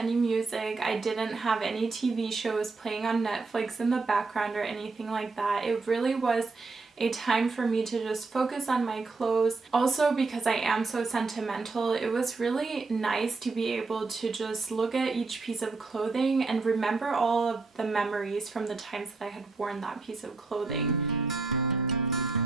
music. I didn't have any TV shows playing on Netflix in the background or anything like that. It really was a time for me to just focus on my clothes. Also, because I am so sentimental, it was really nice to be able to just look at each piece of clothing and remember all of the memories from the times that I had worn that piece of clothing.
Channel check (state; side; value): quieter; left; 4.0 dB